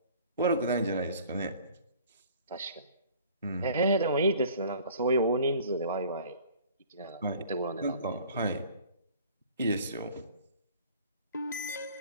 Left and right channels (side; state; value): both; inverted; correlation -0.50